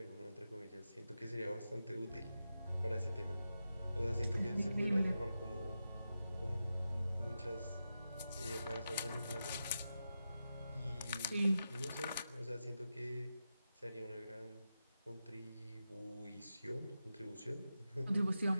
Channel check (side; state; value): both; inverted; correlation -0.89